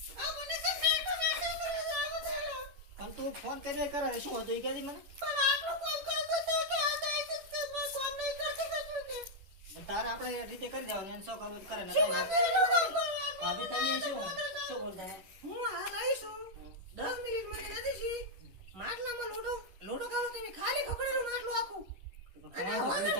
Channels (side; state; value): left; late; 11 ms